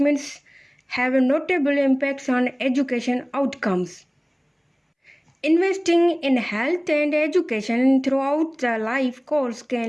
have notable impacts on education outcomes. Investing in health and education throughout the life course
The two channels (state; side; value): identical; both; correlation 1.00